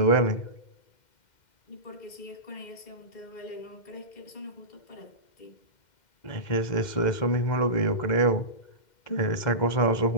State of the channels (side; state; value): right; late; 2.1 ms